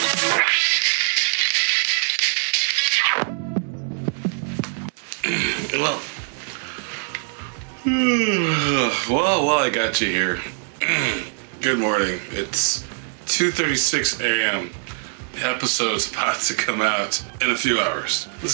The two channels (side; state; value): left; silent; 56 dB below the other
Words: Well, I got you here. Good morning. It's 2:36 a.m. The episode's about to come out in a few hours.